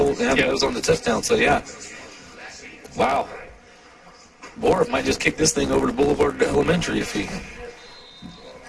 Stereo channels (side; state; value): both; identical; correlation 1.00